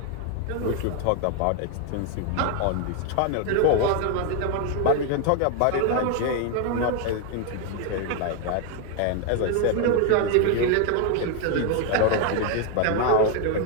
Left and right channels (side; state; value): both; different; correlation 0.01